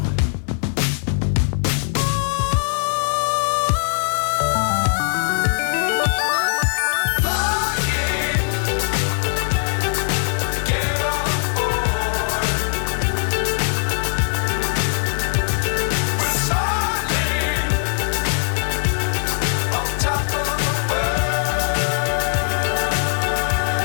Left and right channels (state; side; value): silent; right; 65 dB below the other